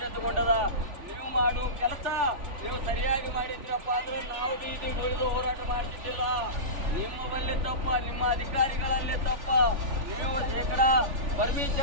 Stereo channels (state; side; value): late; left; 3.4 ms